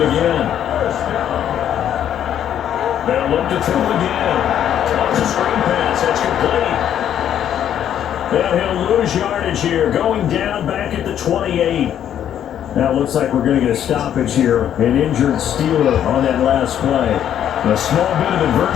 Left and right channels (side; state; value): right; quieter; 10.1 dB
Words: again. They'll look to throw again. Toss a screen pass. That's complete. And he'll lose yardage here, going down back at the 28. Now it looks like we're going to get a stoppage here. An injured Steeler on that last play. A small bit of